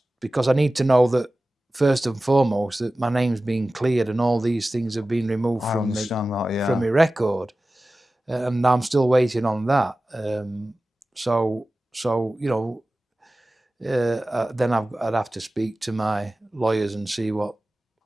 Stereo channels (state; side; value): normal; both; correlation 0.96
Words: because I need to know that first and foremost that my name's been cleared and all these things have been removed I from understand that, yeah. from my record, and I'm still waiting on that. So then I'd have to speak to my lawyers and see what